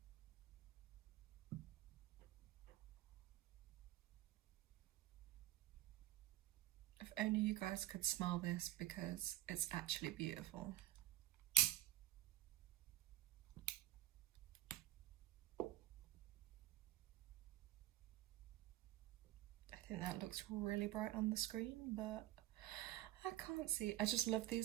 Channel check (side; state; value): left; quieter; 15.1 dB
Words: If only you guys could smell this, because it's actually beautiful. I think that looks really bright on the screen, but I can't see. I just love